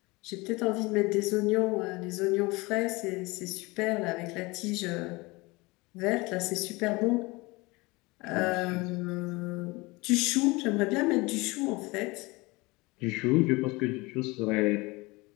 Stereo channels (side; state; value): right; quieter; 23.8 dB